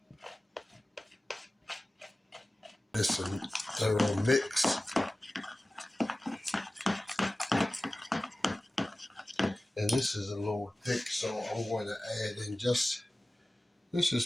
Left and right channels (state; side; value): normal; both; correlation 0.96